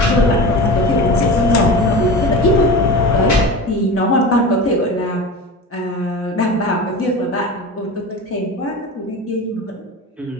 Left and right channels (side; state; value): both; normal; correlation 0.30